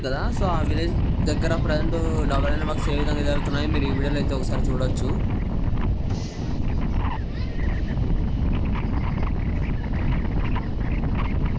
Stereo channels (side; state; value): both; identical; correlation 1.00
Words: కదా. సో ఆ విలేజ్ దగ్గర ప్రజెంట్ డబల్ లైన్ వర్క్స్ ఏ విధంగా జరుగుతున్నాయో మీరు ఈ వీడియోలో అయితే ఒకసారి చూడొచ్చు.